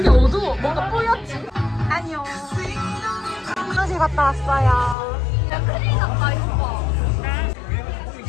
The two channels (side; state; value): right; drops out; at 5.0 s